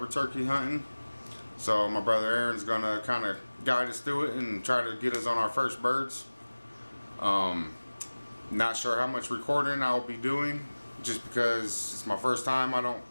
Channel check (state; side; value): inverted; both; correlation -1.00